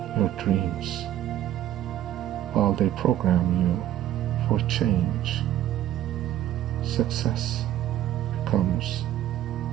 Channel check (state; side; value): quieter; left; 12.4 dB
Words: your dreams while they program you for change. Success becomes